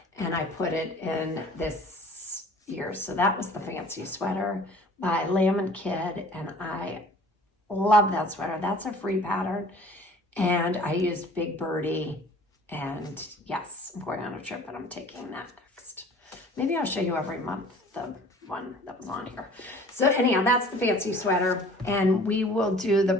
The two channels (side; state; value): both; normal; correlation 0.49